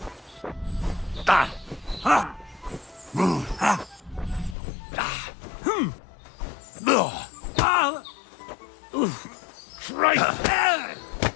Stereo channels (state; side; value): drops out; right; at 4.5 s